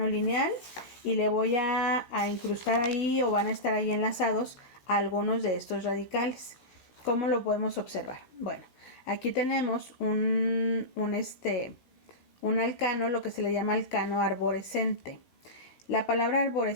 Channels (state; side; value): late; right; 17 ms